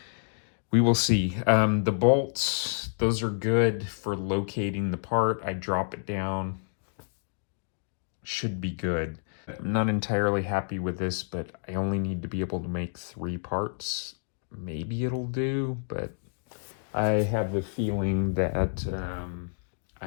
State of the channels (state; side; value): silent; right; digital silence